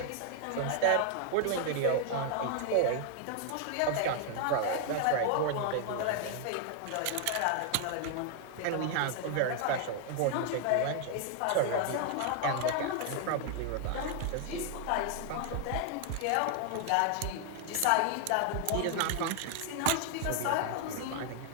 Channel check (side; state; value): both; different; correlation 0.00